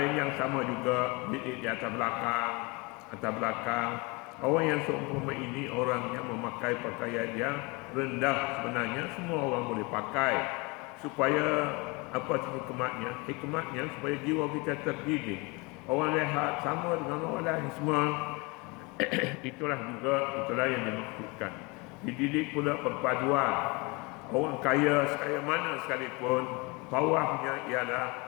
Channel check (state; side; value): quieter; right; 27.3 dB